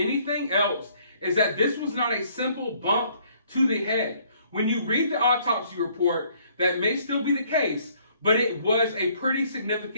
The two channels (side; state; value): both; inverted; correlation -0.63